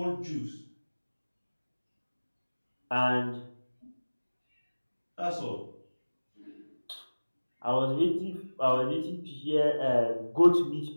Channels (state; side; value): inverted; both; correlation -1.00